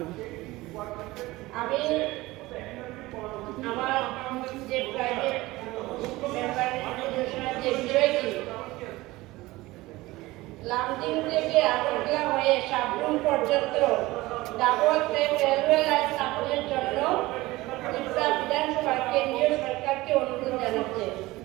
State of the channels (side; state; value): left; quieter; 19.4 dB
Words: আমি আমার যে প্রাইভেট মেম্বার যে বিষয়টি লামডিং থেকে আগরতলা হয়ে সাবরুম পর্যন্ত ডাবল ট্রেন রেলওয়ে লাইন স্থাপনের জন্য ত্রিপুরা বিধানসভা কেন্দ্রীয় সরকারকে অনুরোধ জানাচ্ছে।